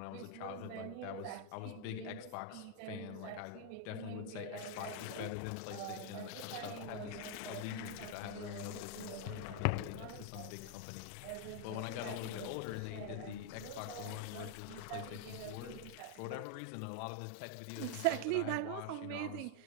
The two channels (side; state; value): both; different; correlation 0.00